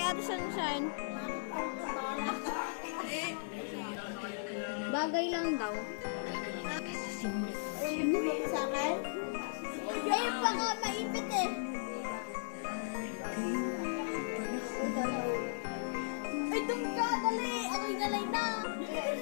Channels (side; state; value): right; silent; digital silence